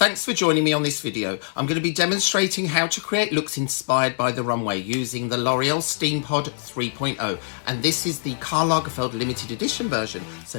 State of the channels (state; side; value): silent; right; 60 dB below the other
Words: for joining me on this video. I'm going to be demonstrating how to create looks inspired by the runway using the L'Oreal Steampod 3.0, and this is the Karl Lagerfeld limited edition version,